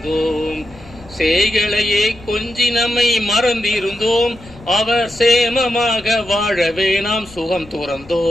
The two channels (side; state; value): left; noise; rumble, 21 dB below the sound